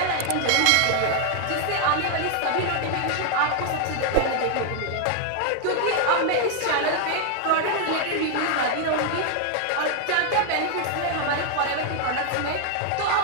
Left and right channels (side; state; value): both; different; correlation 0.00